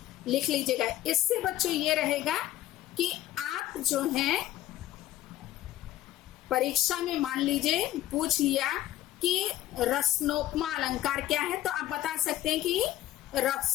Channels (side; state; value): right; quieter; 14.2 dB